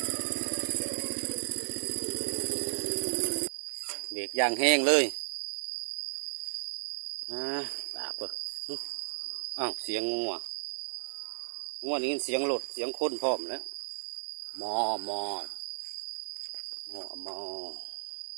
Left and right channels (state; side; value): silent; left; digital silence